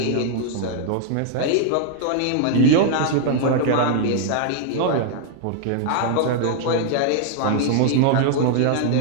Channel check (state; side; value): different; both; correlation 0.00